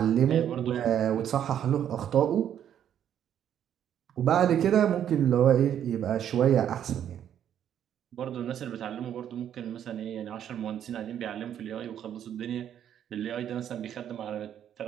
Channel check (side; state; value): left; quieter; 9.9 dB